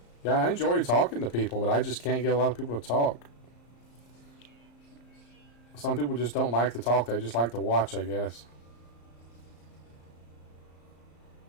Yeah, I enjoy talking to people, but I just can't get a lot of people to talk. Some people just don't like to talk. They just like to watch, I guess.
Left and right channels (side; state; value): right; late; 34 ms